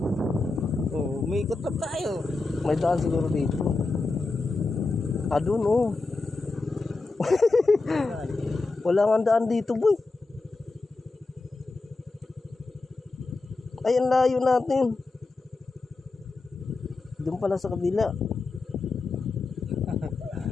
Oh, may ikot na tayo. May daan siguro dito. Doon oh. Wala nga daan dito boy. Ay, ang layo natin. Doon pala sa kabila.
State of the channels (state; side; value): quieter; right; 3.5 dB